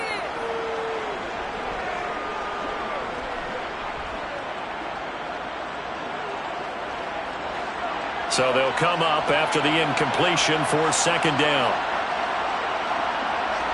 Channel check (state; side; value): identical; both; correlation 1.00